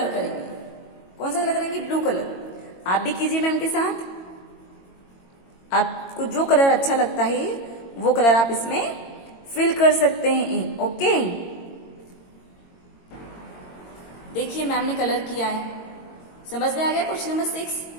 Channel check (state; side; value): late; right; 22 ms